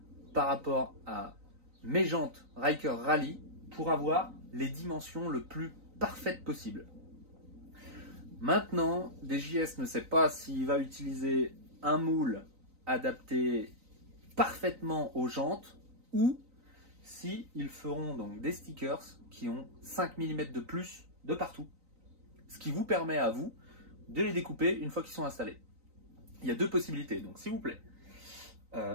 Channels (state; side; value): late; left; 3.9 ms